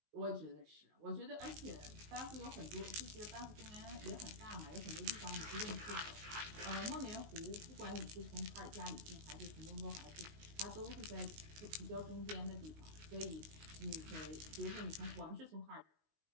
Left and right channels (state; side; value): late; left; 19 ms